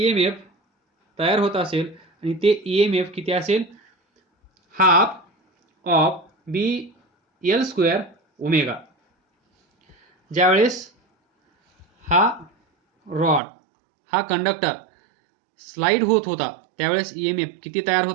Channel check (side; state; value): left; drops out; at 13.4 s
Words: तयार होत असेल आणि ते EMF किती असेल, half of B L square omega. ज्यावेळेस हा रॉड हा कंडक्टर स्लाइड होत होता त्यावेळेस EMF किती तयार